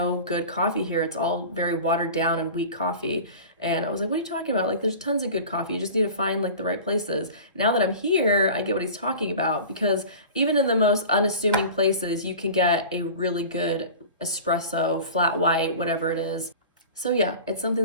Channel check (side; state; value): both; inverted; correlation -0.37